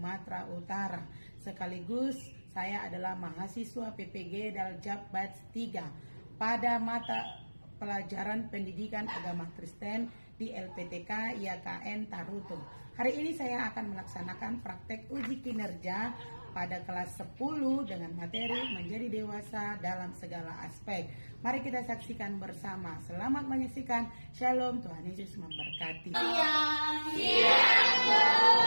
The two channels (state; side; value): inverted; both; correlation -1.00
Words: Utara. Sekaligus saya adalah mahasiswa PPG Daljab Batch 3 pada mata pelajaran pendidikan agama Kristen di LPTK IAKN Tarutung. Hari ini saya akan melaksanakan praktek uji kinerja pada kelas 10 dengan materi menjadi dewasa dalam segala aspek. Mari kita saksikan bersama. Selamat menyaksikan. Shalom, Tuhan Yesus memberkati. Siang.